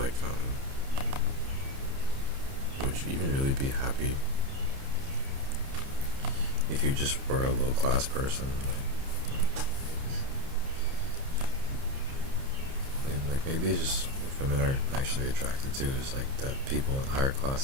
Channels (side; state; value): left; late; 30 ms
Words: would you even really be happy if you just were a low class person? Like maybe it's just what women are actually attracted to is like that people in higher